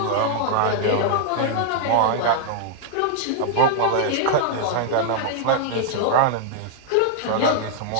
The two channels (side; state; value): both; different; correlation -0.01